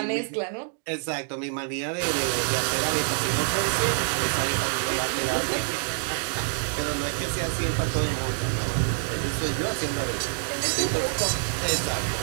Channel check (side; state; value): left; silent; 61 dB below the other